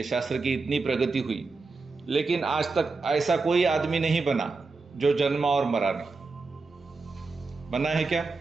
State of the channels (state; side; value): quieter; left; 4.0 dB